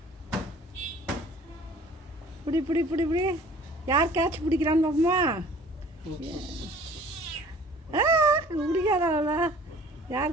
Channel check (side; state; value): both; normal; correlation 0.50